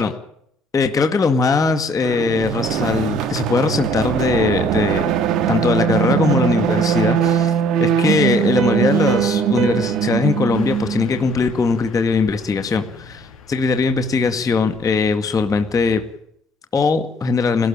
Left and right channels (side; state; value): both; normal; correlation 0.59